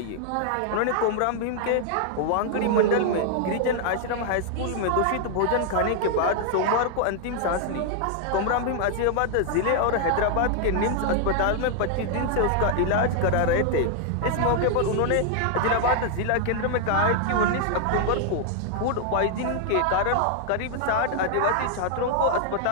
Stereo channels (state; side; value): different; both; correlation 0.00